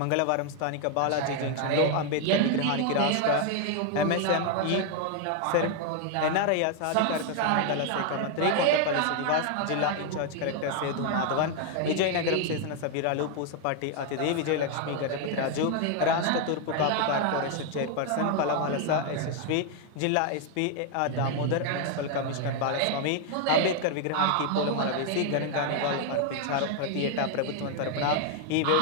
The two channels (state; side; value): different; both; correlation 0.01